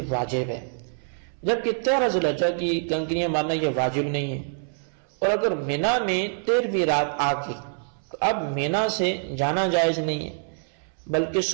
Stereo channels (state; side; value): silent; left; 61 dB below the other